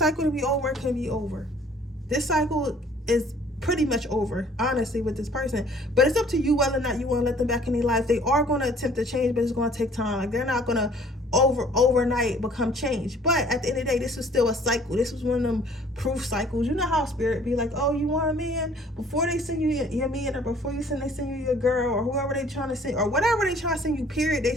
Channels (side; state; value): both; normal; correlation 0.55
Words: to be over, it can be over. This cycle is pretty much over, honestly, with this person. But it's up to you whether or not you want to let them back in your life. They are going to attempt to change, but it's going to take time. Like, they're not going to overnight become changed. But at the end of the day, this is still a cycle. This was one of them proof cycles. You know how spirit be like, oh, you want a man? Before they send you your man, or before they send you your girl, or whoever they trying to send, or whatever they trying to send you, period, they